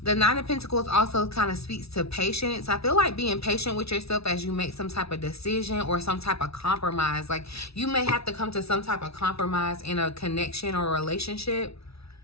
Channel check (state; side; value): late; right; 0.77 ms